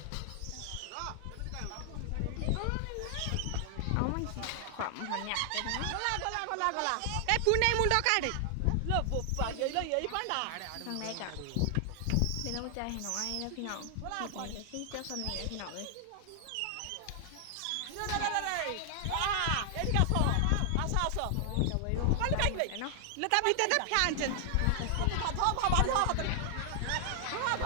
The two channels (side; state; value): both; different; correlation 0.00